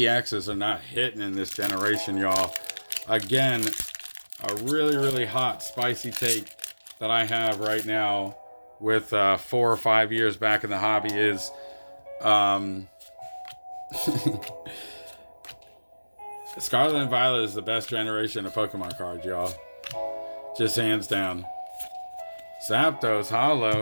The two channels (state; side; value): inverted; both; correlation -1.00